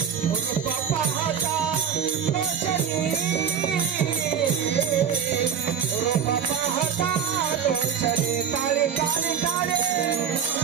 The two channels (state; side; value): quieter; left; 7.8 dB